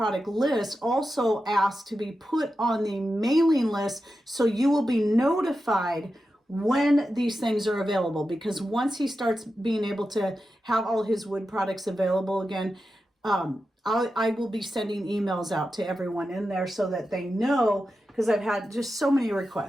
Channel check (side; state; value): both; normal; correlation 0.91